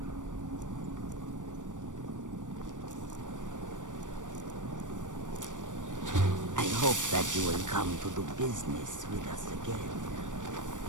I hope that you will come to do business with us again.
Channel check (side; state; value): left; late; 0.87 ms